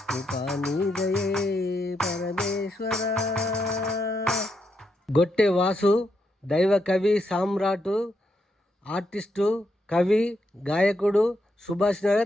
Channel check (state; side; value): normal; both; correlation 0.81